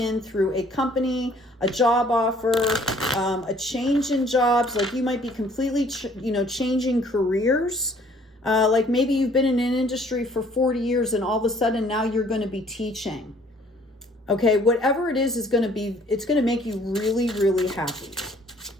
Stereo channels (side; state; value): both; normal; correlation 0.58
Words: through a company, a job offer, a change in jobs. Like you might be completely, changing careers. Like maybe you've been in an industry for 40 years and all of a sudden now you're going to be teaching. Okay, whatever it is going to be, it's going to make you really, really happy.